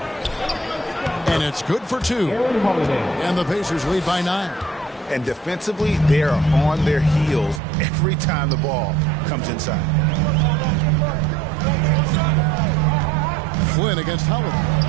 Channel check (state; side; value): drops out; left; at 7.6 s